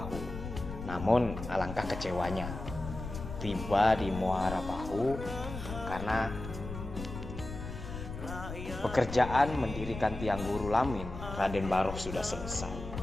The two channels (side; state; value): left; noise; rumble, 9 dB below the sound